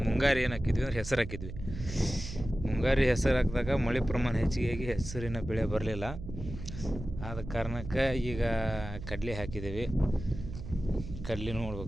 ಮುಂಗಾರಿ ಏನು ಹಾಕಿದ್ವಿ ಅಂದ್ರೆ ಹೆಸರು ಹಾಕಿದ್ವಿ. ಮುಂಗಾರಿ ಹೆಸರು ಹಾಕಿದಾಗ ಮಳೆ ಪ್ರಮಾಣ ಹೆಚ್ಚಿಗೆ ಹೆಸರಿನ ಬೆಳೆ ಬರಲಿಲ್ಲ. ಆದ ಕಾರಣಕ್ಕೆ ಈಗ ಕಡ್ಲೆ ಹಾಕಿದ್ದೀವಿ. ಕಡ್ಲೆ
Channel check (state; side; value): noise; right; hum, 10 dB below the sound